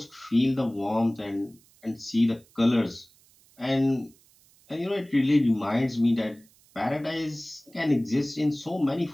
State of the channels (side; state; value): right; noise; hiss, 30 dB below the sound